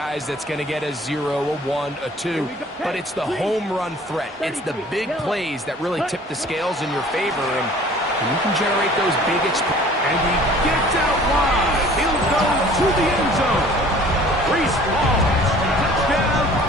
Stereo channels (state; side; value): normal; both; correlation 0.50